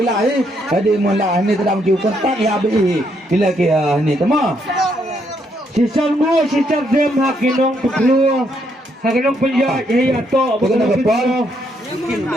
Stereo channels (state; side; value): normal; both; correlation 0.74